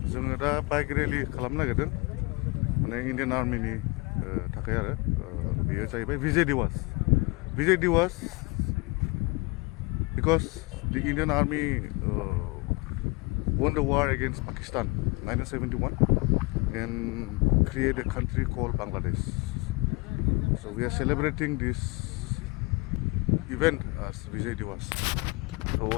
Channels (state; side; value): quieter; right; 26.6 dB